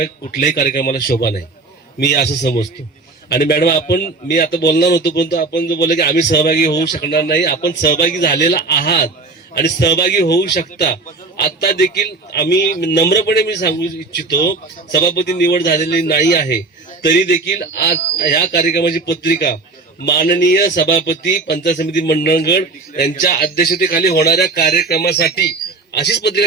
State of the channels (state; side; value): quieter; left; 3.7 dB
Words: कुठल्याही कार्यक्रमाला शोभा नाही, मी असं समजतो. आणि मॅडम, मी आता बोलणार होतो, परंतु आपण जो बोलले की आम्ही सहभागी होऊ शकणार नाही, आपण सहभागी झालेला आहात आणि सहभागी होऊ शकता. आता देखील आम्ही नम्रपणे मी सांगू इच्छितो, सभापती निवड झालेली नाही आहे तरी देखील आज ह्या कार्यक्रमाची पत्रिका माननीय सभापती पंचायत समिती मंडळगड यांच्या अध्यक्षतेखाली होणाऱ्या कार्यक्रमासाठी अशीच